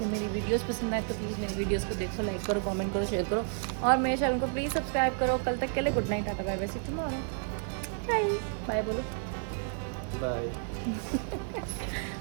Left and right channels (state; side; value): silent; left; 57 dB below the other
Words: मेरी वीडियोस पसंद आए तो प्लीज़ मेरी वीडियोस को देखो, लाइक करो, कमेंट करो, शेयर करो और मेरे चैनल को प्लीज़ सब्सक्राइब करो। कल तक के लिए good night, tata bye bye, see you tomorrow. Bye bye बोलो। बाय।